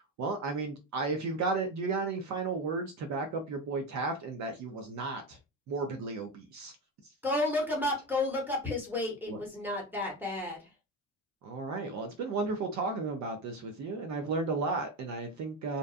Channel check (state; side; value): normal; both; correlation 0.18